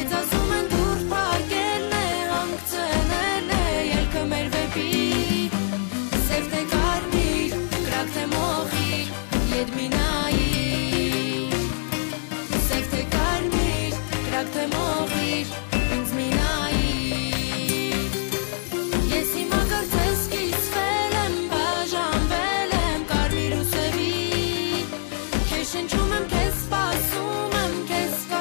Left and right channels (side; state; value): right; silent; digital silence